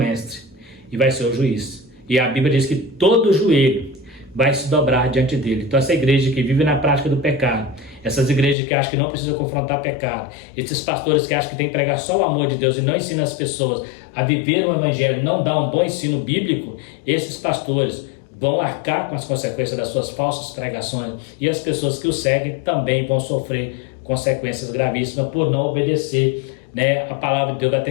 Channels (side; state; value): right; drops out; at 8.6 s